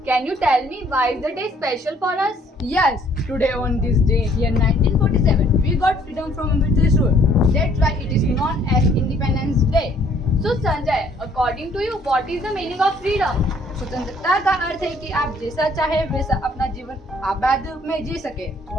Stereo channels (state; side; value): normal; both; correlation 0.61